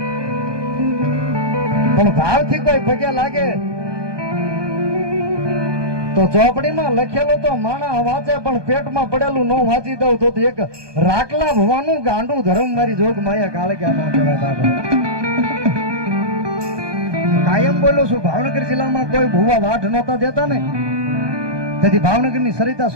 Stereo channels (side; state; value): left; late; 1.2 ms